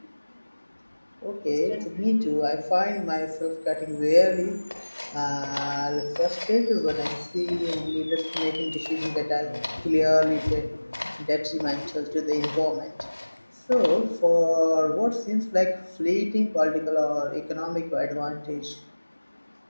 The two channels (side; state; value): both; inverted; correlation -1.00